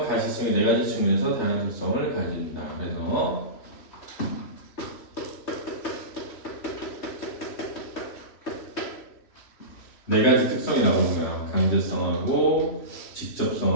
가시성이 네 가지 측면에서 다양한 특성을 가진다. 그래서 네 가지 특성이 나오는 거야. 강제성하고,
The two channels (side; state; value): right; late; 3.1 ms